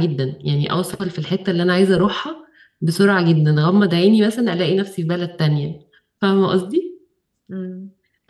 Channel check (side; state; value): both; identical; correlation 1.00